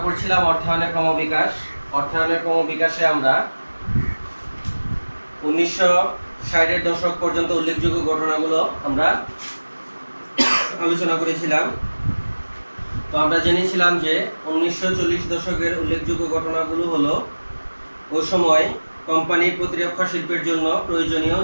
পড়ছিলাম অর্থায়নের ক্রমবিকাশ। অর্থায়নের ক্রমবিকাশে আমরা 1960-এর দশক পর্যন্ত উল্লেখযোগ্য ঘটনাগুলো আমরা আলোচনা করেছিলাম। তো আমরা জেনেছিলাম যে 1940 দশকের উল্লেখযোগ্য ঘটনাগুলো হলো ওই সময় কোম্পানির প্রতিরক্ষা শিল্পের জন্য প্রয়োজনীয়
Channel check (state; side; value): inverted; both; correlation -1.00